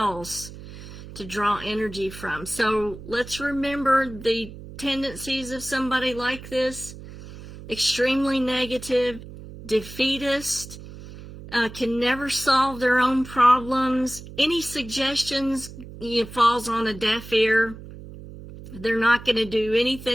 to draw energy from. So let's remember the tendencies of somebody like this: extremely negative, defeatist, can never solve their own problems. Any suggestions falls on a deaf ear. They're not going to do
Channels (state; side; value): noise; right; hum, 14 dB below the sound